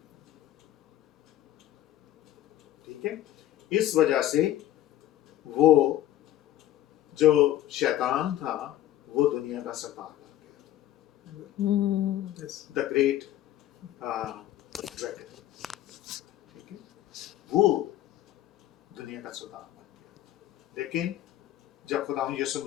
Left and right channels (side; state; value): right; quieter; 13.1 dB